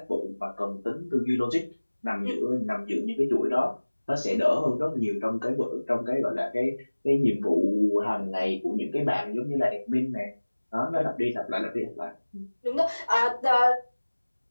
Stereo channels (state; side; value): inverted; both; correlation -1.00